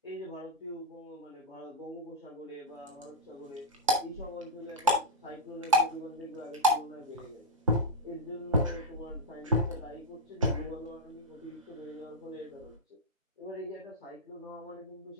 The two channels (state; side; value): normal; both; correlation -0.03